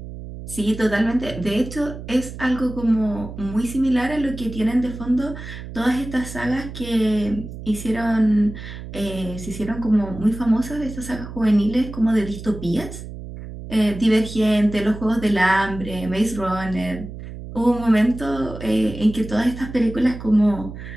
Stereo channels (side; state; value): right; noise; hum, 11 dB below the sound